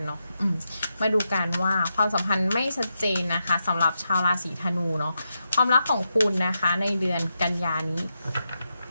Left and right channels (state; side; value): inverted; both; correlation -0.86